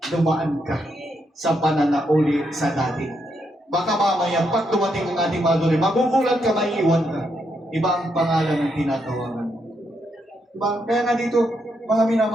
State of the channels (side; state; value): both; normal; correlation 0.79